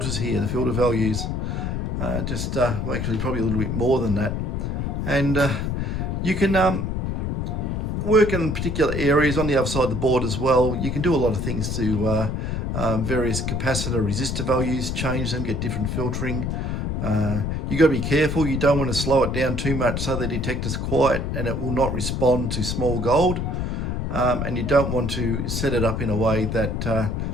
here, the filter values. Well, actually probably a little bit more than that. And you can work in particular areas on the other side of the board as well. You can do a lot of things to various capacitor resistor values, change them, get different filtering. You got to be careful. You don't want to slow it down too much so the detector's quiet and it will not respond to small gold. And you don't want to set it up in a way that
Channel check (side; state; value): left; noise; rumble, 1 dB below the sound